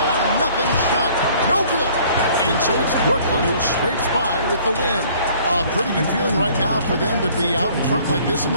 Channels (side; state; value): both; inverted; correlation -0.56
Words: shot. No good. And so it's Brooklyn who scrapes by with the win. A pretty good feeling right now for them to be out in front like this in